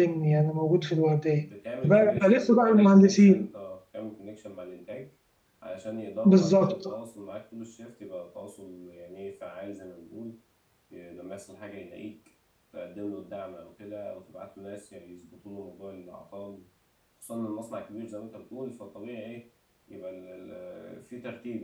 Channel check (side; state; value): both; identical; correlation 1.00